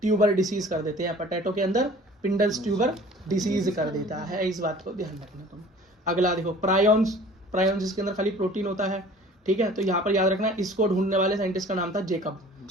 ट्यूबर डिसीज कर देते हैं। पोटैटो के अंदर स्पिंडल ट्यूबर डिसीज कर देता है, इस बात को ध्यान रखना तुम। अगला देखो, प्रायोन्स जिसके अंदर खाली प्रोटीन होता है, ठीक है। तो यहाँ पर याद रखना, इसको ढूंढने वाले साइंटिस्ट का नाम था जेकब,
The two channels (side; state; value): both; normal; correlation 0.47